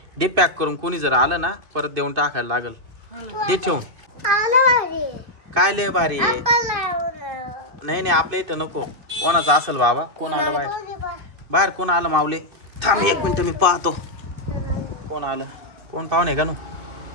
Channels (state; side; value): late; left; 2.6 ms